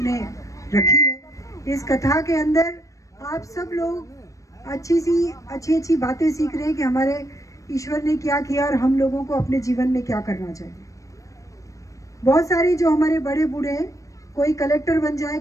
रखी है। इस कथा के अंदर आप सब लोग अच्छी बातें सीख रहे हैं कि हमारे ईश्वर ने क्या किया और हम लोगों को अपने जीवन में क्या करना चाहिए। बहुत सारी जो हमारे बड़े बूढ़े हैं, कोई कलेक्टर बन जाए,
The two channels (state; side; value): late; right; 0.16 ms